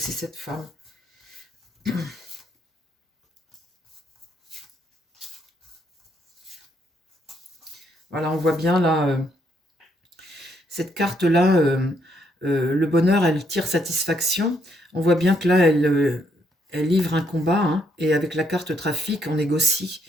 cette femme. Voilà, on voit bien là, cette carte-là, le bonheur, elle tire satisfaction. On voit bien que là, elle livre un combat, hein, et avec la carte trafic, on négocie.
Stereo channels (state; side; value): normal; both; correlation 0.73